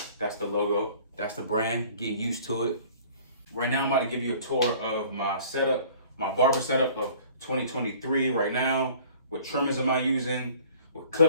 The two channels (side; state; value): both; inverted; correlation -0.51